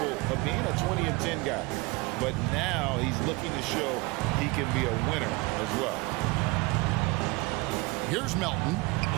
of being a 20-10 guy. But now he's looking to show he can be a winner as well. Here's Melton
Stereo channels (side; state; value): left; quieter; 24.3 dB